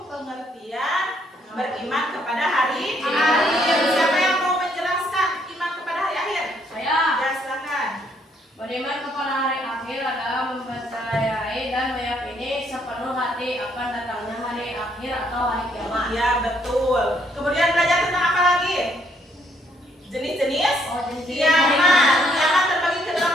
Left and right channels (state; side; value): normal; both; correlation 0.69